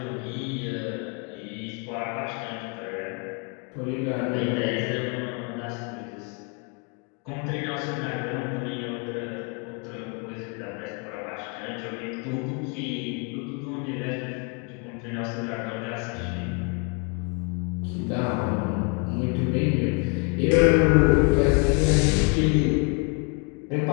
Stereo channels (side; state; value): right; quieter; 34.8 dB